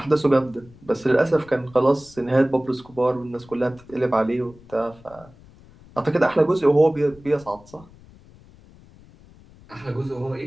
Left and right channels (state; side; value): noise; left; rumble, 24 dB below the sound